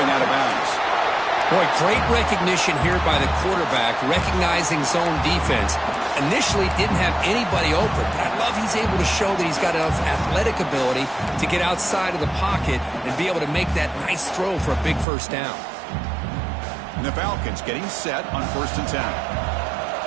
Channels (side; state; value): left; drops out; at 15.1 s